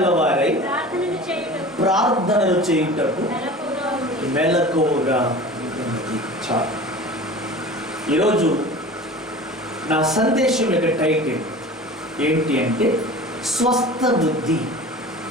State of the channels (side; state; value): both; normal; correlation 0.38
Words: ప్రార్థనలు చేయుటకు మెలకువగా ఉన్నది. చాలు. ఈరోజు నా సందేశం యొక్క టైటిల్ ఏంటి అంటే స్వస్థ బుద్ధి.